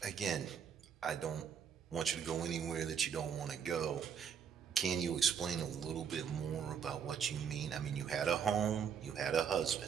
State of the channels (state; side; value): quieter; left; 7.4 dB